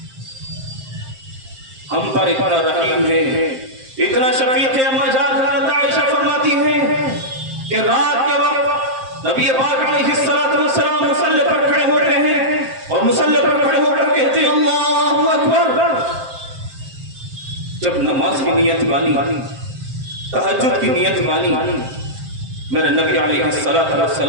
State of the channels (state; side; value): late; left; 7.6 ms